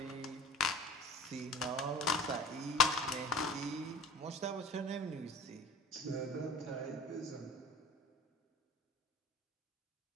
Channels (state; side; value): normal; both; correlation 0.39